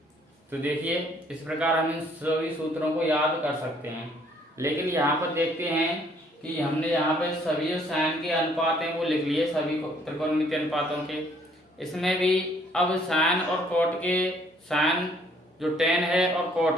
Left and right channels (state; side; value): normal; both; correlation 0.63